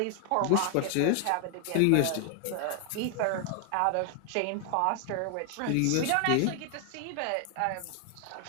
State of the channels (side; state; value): both; different; correlation 0.00